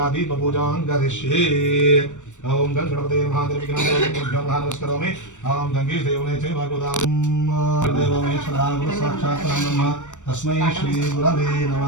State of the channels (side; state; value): right; late; 0.85 ms